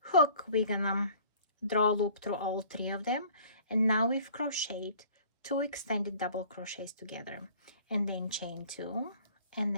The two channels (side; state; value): both; inverted; correlation -0.51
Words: hook, we're gonna draw a loop through all 3 of them, and now we've crocheted 2 extended double crochets together, and then chain 2, and